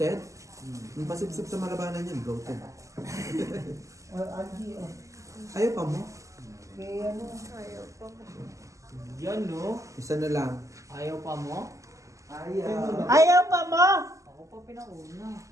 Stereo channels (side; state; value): left; late; 0.16 ms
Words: Yung pasipsip sa malabanan yan, bloated. Angie, oh. Ayaw pa mo? Kay ano? Ayaw pa. Yan no. Isa na lang. Ayaw pa mo? Ayaw pa mo! Ako pa pinauna.